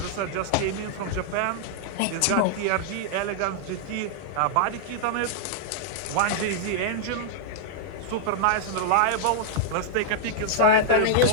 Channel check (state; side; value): different; both; correlation -0.01